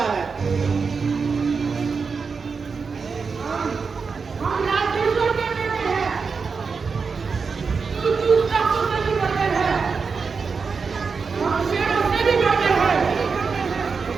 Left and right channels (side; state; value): left; quieter; 5.2 dB